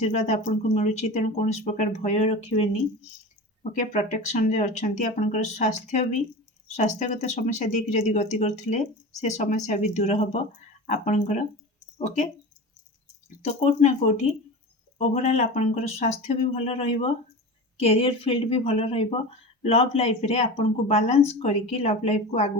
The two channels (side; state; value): both; normal; correlation 0.30